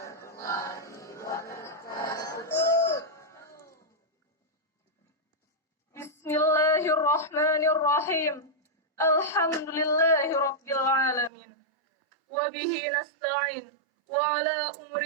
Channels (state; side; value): drops out; left; at 11.3 s